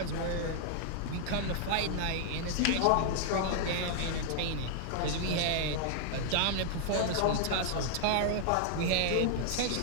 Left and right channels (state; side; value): different; both; correlation -0.01